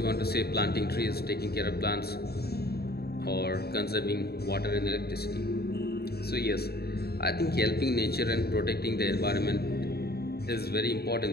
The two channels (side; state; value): right; late; 0.46 ms